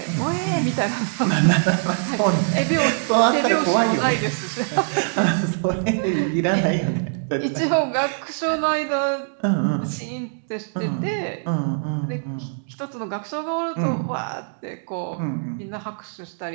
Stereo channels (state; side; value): silent; left; digital silence